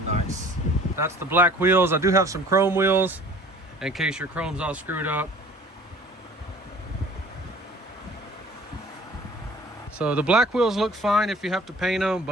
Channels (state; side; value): normal; both; correlation 0.49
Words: nice. That's the black wheels. I do have some chrome wheels in case your chrome's all screwed up. So the black wheels look fine if you have to paint them,